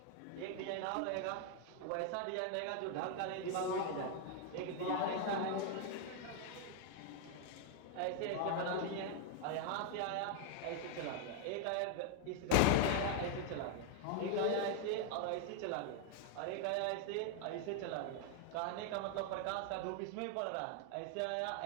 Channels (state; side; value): different; both; correlation 0.00